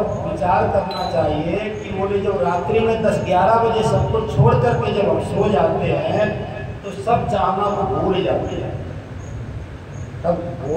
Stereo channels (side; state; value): both; identical; correlation 1.00